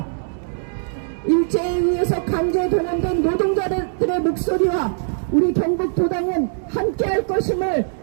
일제에 의해서 강제 동원된 노동자들의 목소리와 우리 경북도당은 함께할 것임을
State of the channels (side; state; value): left; silent; digital silence